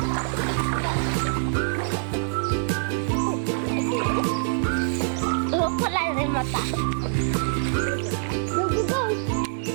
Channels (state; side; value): silent; left; 62 dB below the other